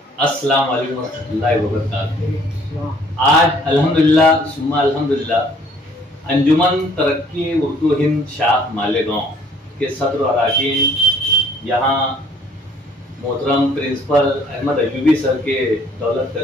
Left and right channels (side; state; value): both; normal; correlation 0.59